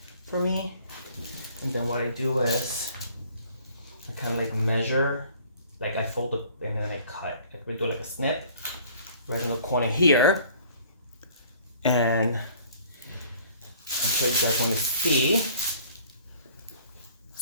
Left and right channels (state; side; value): inverted; both; correlation -0.54